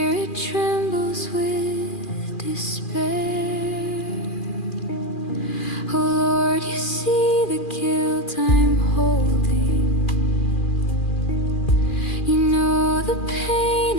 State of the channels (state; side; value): late; right; 2.4 ms